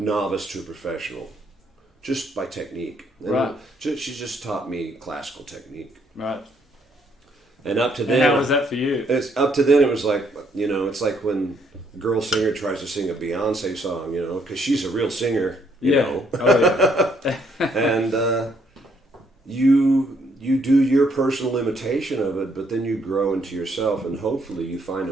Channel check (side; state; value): both; normal; correlation 0.69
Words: to a professional, just by technique. And right. She just taught me classical technique. Right. And up to then, how was that for you? Up to then, it was like, it's like when a girl singer tries to sing a Beyonce song, because she's a real singer, you know. Oh, yeah. And you do your personal imitation of it, but then you grow into yourself, and hopefully you find